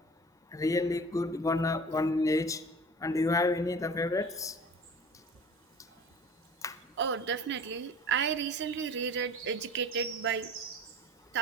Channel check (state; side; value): normal; both; correlation 0.41